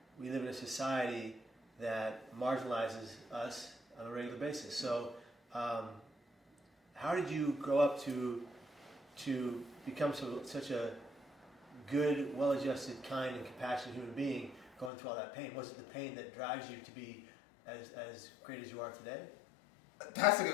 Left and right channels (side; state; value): right; drops out; at 14.9 s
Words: we live in a society that marginalizes us on a regular basis. So, how did you grow up to become such a good, well-adjusted, kind, and compassionate human being going through all that pain? Was it the pain that drives you to be as great as you are today? That's a